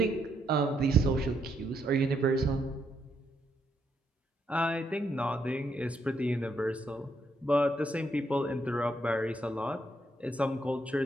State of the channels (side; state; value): both; normal; correlation 0.76